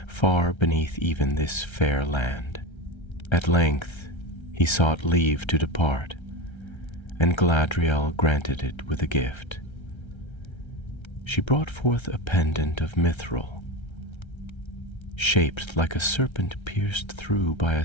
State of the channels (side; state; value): right; late; 1.3 ms